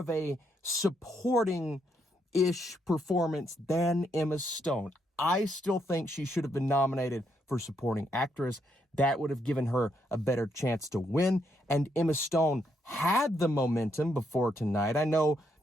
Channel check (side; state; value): both; normal; correlation 0.76